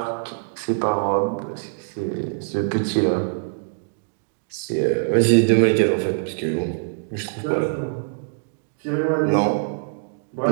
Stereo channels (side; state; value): left; silent; digital silence